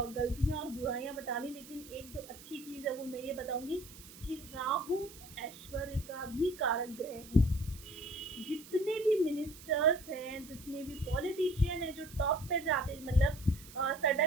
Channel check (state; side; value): noise; right; hiss, 18 dB below the sound